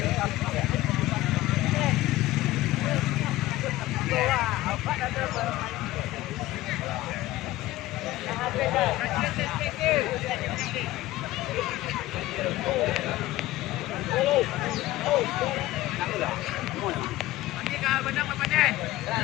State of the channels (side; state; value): right; quieter; 16.8 dB